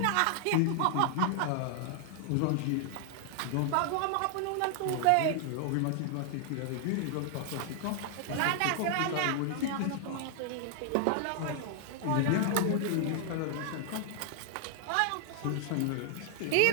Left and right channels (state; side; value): different; both; correlation 0.00